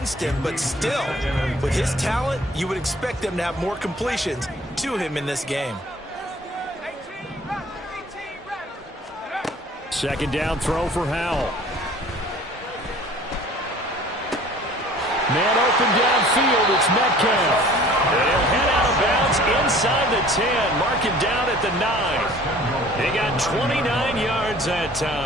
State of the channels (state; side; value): normal; both; correlation 0.49